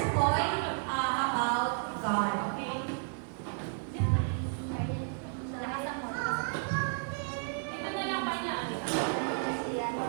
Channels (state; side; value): silent; left; 56 dB below the other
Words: point about God. Okay? Lakasan mo. Dito na lang ba niya?